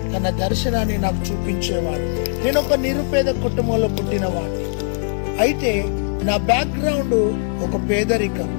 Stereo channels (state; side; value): silent; right; 65 dB below the other